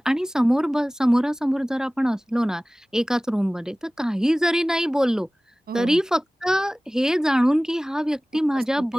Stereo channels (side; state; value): both; normal; correlation 0.98